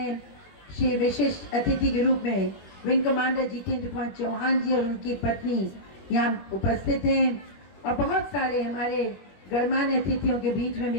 श्री विशिष्ट अतिथि के रूप में विंग कमांडर जितेंद्र कुमार चौहान जी और उनकी पत्नी यहाँ उपस्थित हैं, और बहुत सारे हमारे गणमान्य अतिथियों के बीच में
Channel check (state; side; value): late; right; 21 ms